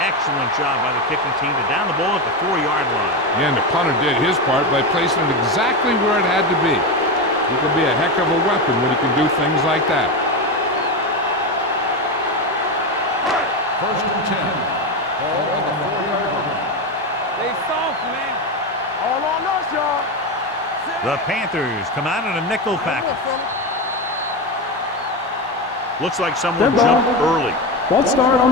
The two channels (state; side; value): normal; both; correlation 0.16